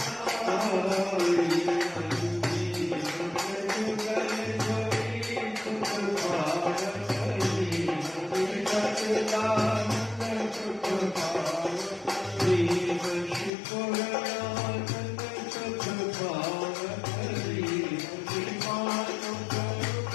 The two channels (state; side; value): drops out; right; at 13.5 s